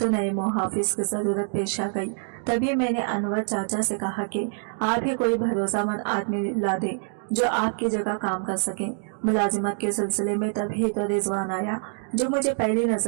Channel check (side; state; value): left; silent; 61 dB below the other